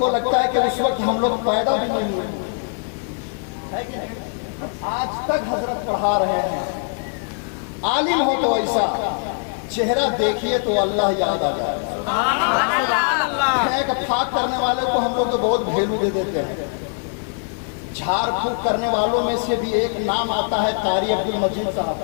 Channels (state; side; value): silent; right; digital silence